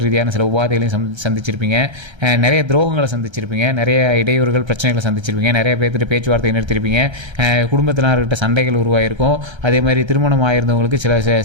ரீதியான சில உபாதைகளையும் சந்திச்சிருப்பீங்க. நிறைய துரோகங்களை சந்திச்சிருப்பீங்க. நிறைய இடையூறுகள், பிரச்சனைகளை சந்திச்சிருப்பீங்க. நிறைய பேர்த்துட்டு பேச்சுவார்த்தை நிறுத்திருப்பீங்க. குடும்பத்தினர்கிட்ட சண்டைகள் உருவாயிருக்கும். அதே மாதிரி திருமணம் ஆயிருந்தவங்களுக்கு சில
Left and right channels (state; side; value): late; left; 1.3 ms